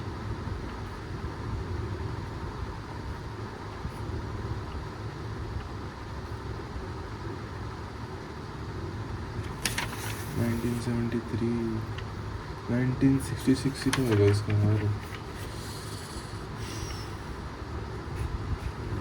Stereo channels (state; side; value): identical; both; correlation 1.00